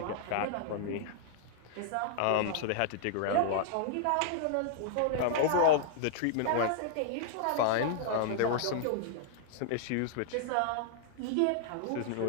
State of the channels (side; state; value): both; different; correlation -0.01